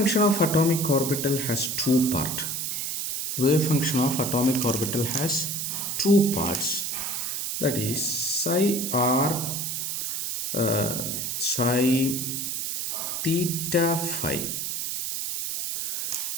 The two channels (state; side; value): noise; right; hiss, 2 dB below the sound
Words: of atomic orbital has two parts. Wave function of atomic orbital has two parts, that is psi r psi theta phi,